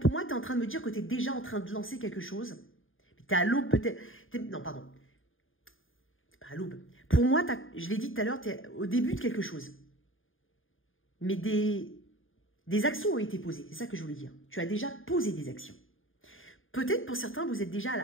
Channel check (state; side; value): late; right; 0.59 ms